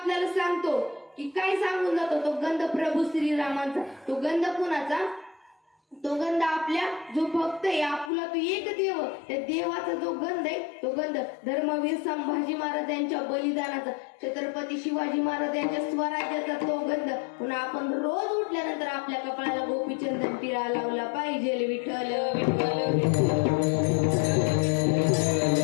सांगतो की काय सांगून जातो तो गंध प्रभू श्रीरामांचा. तो गंध कुणाचा? तो गंध आपल्या जो भक्त आहे आपुला तो एक देव, त्या देवाचा जो गंध आहे तो गंध धर्मवीर संभाजी महाराज यांच्या बलिदानाचा, छत्रपती शिवाजी महाराज यांच्या स्वराज्याचा तो गंध. पुन्हा आपण रोज उठल्यानंतर आपल्या कपाळाला गोपीचंदन टिळा लावला पाहिजे. विठ्ठल विठ्ठल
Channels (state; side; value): drops out; right; at 8.1 s